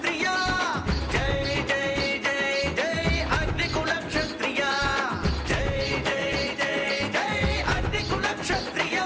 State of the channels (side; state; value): both; identical; correlation 1.00